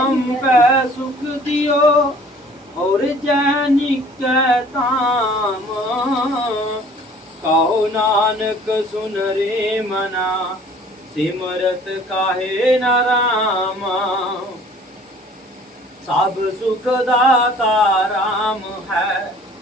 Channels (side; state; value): both; normal; correlation 0.52